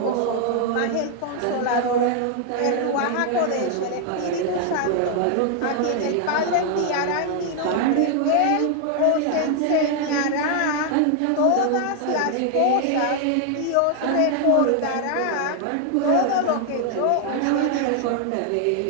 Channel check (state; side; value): different; both; correlation 0.00